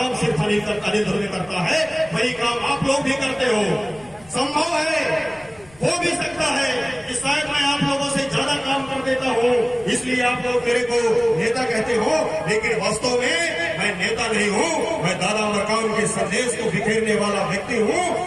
अनिल ध्रुवे करता है वही काम आप लोग भी करते हो। संभव है, हो भी सकता है कि शायद मैं आप लोगों से ज्यादा काम कर देता हूँ, इसलिए आप लोग मेरे को नेता कहते हो, लेकिन वास्तव में मैं नेता नहीं हूँ। मैं दादा मरकाम के संदेश को बिखेरने वाला व्यक्ति हूँ।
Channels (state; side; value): noise; left; rumble, 26 dB below the sound